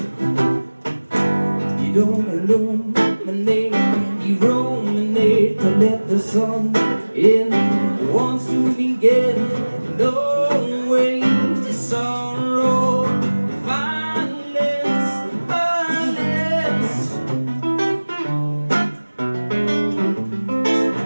You don't illuminate, you ruminate to let the sun in. Wants to begin, no way to sorrow. Violence, violence.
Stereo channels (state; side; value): inverted; both; correlation -1.00